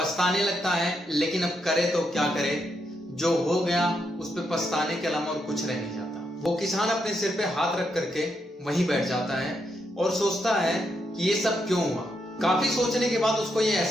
लगता है, लेकिन अब करे तो क्या करे, जो हो गया उस पे पछताने के अलावा और कुछ रह नहीं जाता। वो किसान अपने सिर पे हाथ रख करके वहीं बैठ जाता है और सोचता है कि ये सब क्यों हुआ। काफी सोचने के बाद उसको ये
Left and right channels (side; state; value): both; normal; correlation 0.80